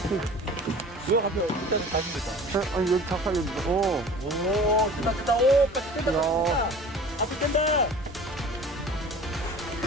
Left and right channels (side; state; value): both; normal; correlation 0.43